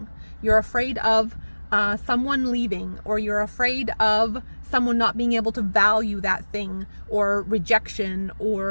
You're afraid of someone leaving, or you're afraid of someone not being able to value that thing, or rejection,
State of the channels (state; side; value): inverted; both; correlation -1.00